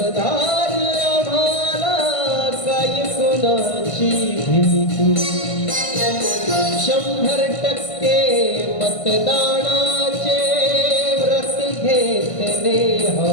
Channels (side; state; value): right; late; 1.5 ms